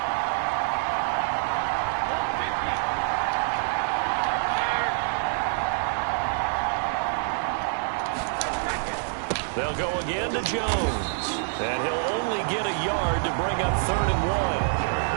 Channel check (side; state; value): left; silent; digital silence